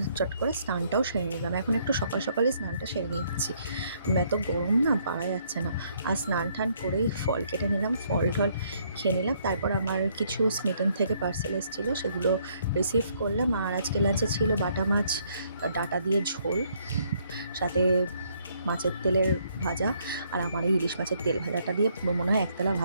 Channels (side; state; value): both; inverted; correlation -0.68